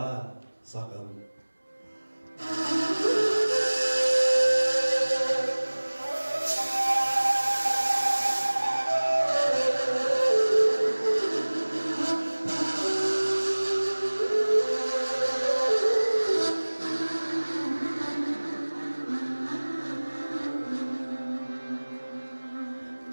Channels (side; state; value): both; inverted; correlation -1.00